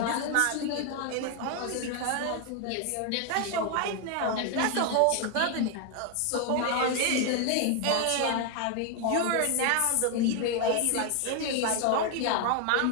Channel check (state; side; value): different; both; correlation 0.01